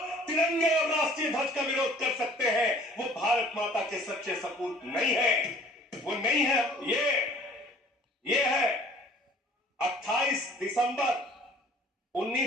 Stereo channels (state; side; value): normal; both; correlation 0.52